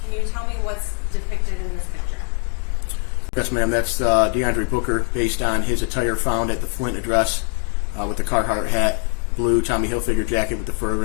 Can you tell me what's depicted in this picture? Yes, ma'am. That's DeAndre Booker, based on his attire found at the Flint address, with the Carhartt hat, blue Tommy Hilfiger jacket with the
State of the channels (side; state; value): right; quieter; 39.1 dB